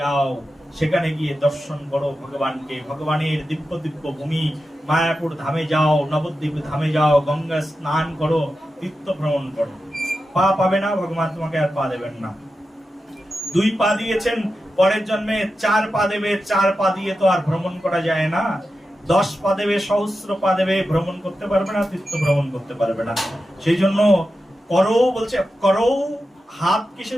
সেখানে গিয়ে দর্শন করো ভগবানকে, ভগবানের দিব্য দিব্য ভূমি মায়াপুর ধামে যাও, নবদ্বীপ ধামে যাও, গঙ্গা স্নান করো, তীর্থ ভ্রমণ করো। পা পাবে না, ভগবান তোমাকে আর পা দেবেন না। 2 পা দিয়েছেন, পরের জন্মে 4 পা দেবে। 4 পা দিয়ে তো আর ভ্রমণ করা যায় না। 10 পা দেবে, সহস্র পা দেবে, ভ্রমণ করতে পারবে না, তীর্থ ভ্রমণ করতে পারবে না। সেই জন্য করো বলছে, করো। হাত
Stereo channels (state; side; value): normal; both; correlation 0.91